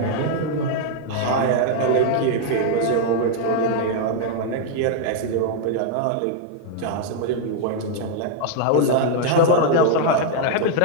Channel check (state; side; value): different; both; correlation 0.00